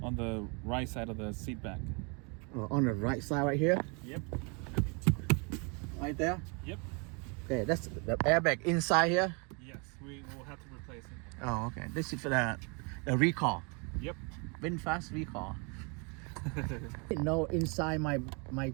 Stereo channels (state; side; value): quieter; left; 33.2 dB